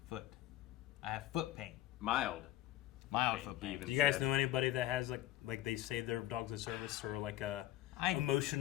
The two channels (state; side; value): quieter; right; 14.7 dB